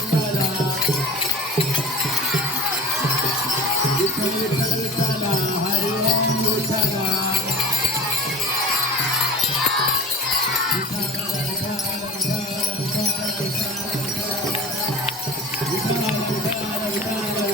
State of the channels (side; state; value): both; normal; correlation 0.36